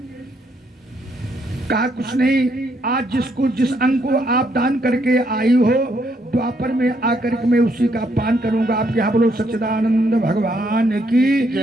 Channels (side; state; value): both; normal; correlation 0.73